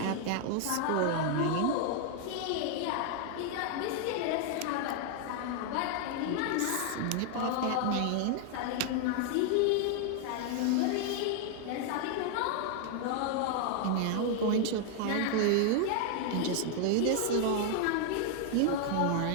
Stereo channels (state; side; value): different; both; correlation 0.00